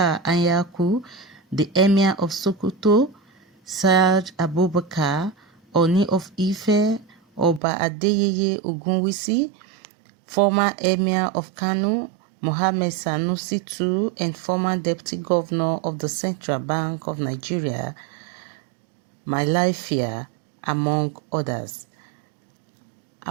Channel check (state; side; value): drops out; left; at 7.6 s